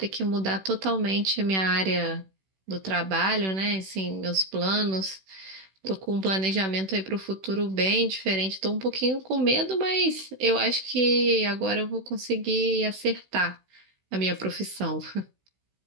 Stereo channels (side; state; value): left; late; 16 ms